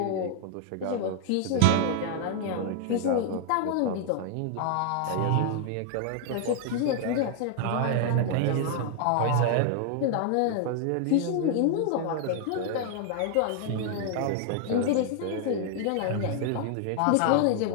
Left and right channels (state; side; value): different; both; correlation 0.00